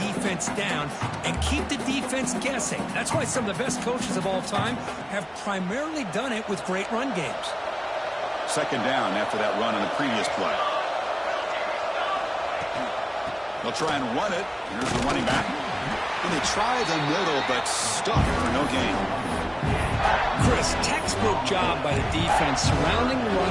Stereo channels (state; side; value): identical; both; correlation 1.00